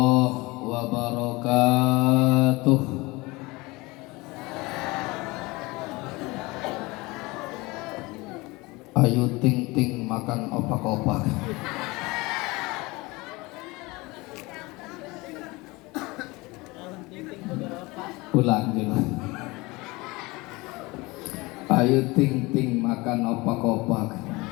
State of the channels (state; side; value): quieter; right; 23.2 dB